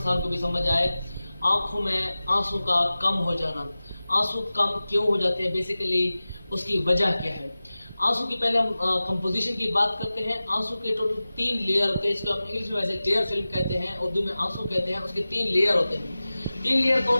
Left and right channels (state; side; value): inverted; both; correlation -0.96